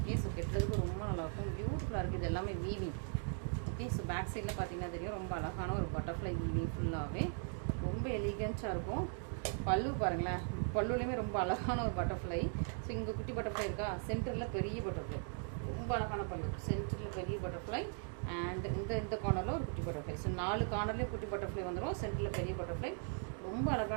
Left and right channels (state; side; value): silent; left; 52 dB below the other